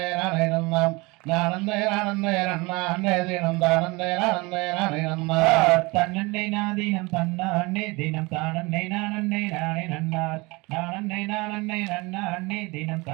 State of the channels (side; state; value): left; quieter; 24.8 dB